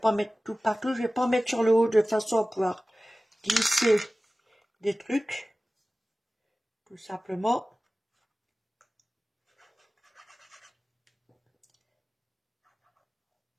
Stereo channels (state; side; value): normal; both; correlation 0.97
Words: mettre tout partout. Je vais pas mettre sur le haut de façon à pouvoir glisser des trucs. Tout simplement.